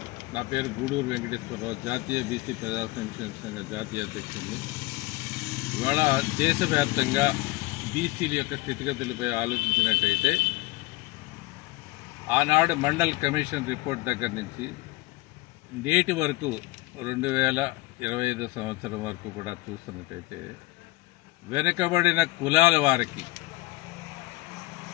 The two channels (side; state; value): right; quieter; 21.1 dB